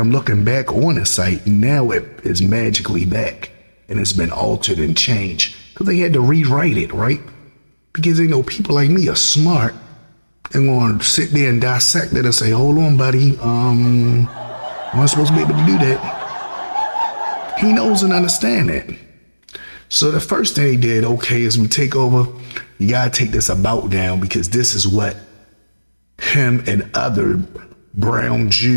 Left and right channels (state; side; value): inverted; both; correlation -1.00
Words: looking back on the site, now it is magically back and it's been altered and changed because they had to rewrite it, right? Because they know people like me are smart and going to sit there and dissect it and say, hold on, buddy, I'm not supposed to be able to do that. He knows and understands that. So the first thing they did, okay, as we take over, you gotta take this about down because this is what him and other brown